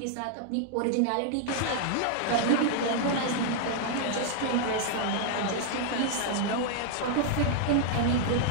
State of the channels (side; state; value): both; different; correlation 0.00